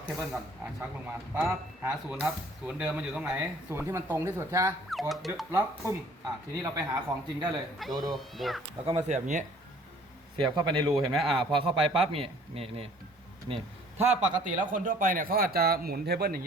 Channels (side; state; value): both; normal; correlation 0.55